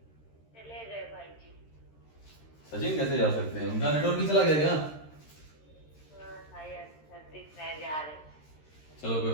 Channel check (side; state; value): right; late; 13 ms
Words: चले गए भाई जी। सचिन कैसे जा सकते हैं, उनका नेटवर्क ही चला गया क्या? जा रहे। चलो कोई